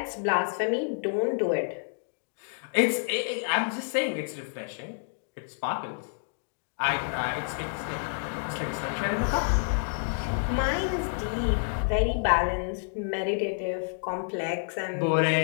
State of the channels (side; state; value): right; silent; digital silence